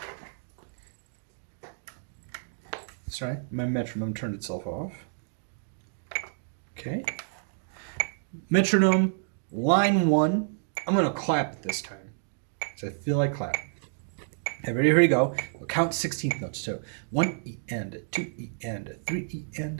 Sorry, my metronome turned itself off. Okay. Metronome, line 1. I'm going to clap it this time, because I feel like clapping. Okay, ready? Here we go. We'll count 16th notes. So 1 E and a 2 E and a 3 E and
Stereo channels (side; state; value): left; silent; digital silence